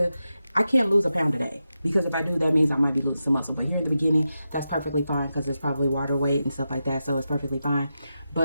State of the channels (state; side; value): inverted; both; correlation -0.89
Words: I can't lose a pound a day, because if I do, that means I might be losing some muscle. But here at the beginning, that's perfectly fine because it's probably water weight and stuff like that, so it's perfectly fine.